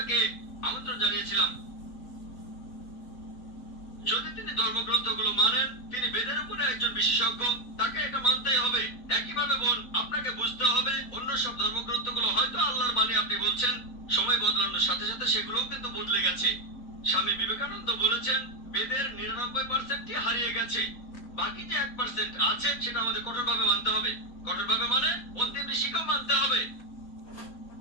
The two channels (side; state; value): right; late; 4.0 ms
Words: আমন্ত্রণ জানিয়েছিলাম, যদি তিনি ধর্মগ্রন্থগুলো মানেন, তিনি বেদের উপরে একজন বিশেষজ্ঞ, তাকে এটা মানতেই হবে। একইভাবে বোন, আপনাকে বুঝতে হবে অন্য সব ধর্মগ্রন্থগুলো হয়তো আল্লাহর বাণী আপনি বলছেন, সময় বদলানোর সাথে সাথে সেগুলোও কিন্তু বদলে গেছে। স্বামী বিবেকানন্দ বলেছেন বেদের 99%ই হারিয়ে গেছে, বাকি যে 1% আছে সেটা আমাদের কঠোরভাবে মানতে হবে। কঠোরভাবে মানে অন্তিম ঋষিকেও মানতে হবে।